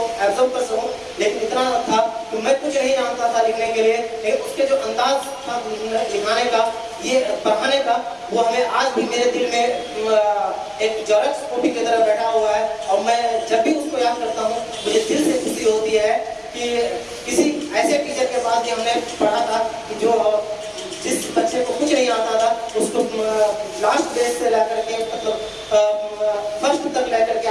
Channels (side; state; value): both; identical; correlation 1.00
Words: एब्जॉर्ब कर सकूं, लेकिन इतना था कि मैं कुछ नहीं जानता था लिखने के लिए, लेकिन उसके जो अंदाज था लिखाने का, ये पढ़ाने का, वो हमें आज भी मेरे दिल में एक जेरॉक्स कॉपी की तरह बैठा हुआ है। और मैं जब भी उसको याद करता हूँ मुझे दिल से खुशी होती है कि किसी ऐसे टीचर के पास भी हमने पढ़ा था कि जो जिस बच्चे को कुछ नहीं आता था उसको लास्ट बेस से लेकर के फर्स्ट तक लेकर के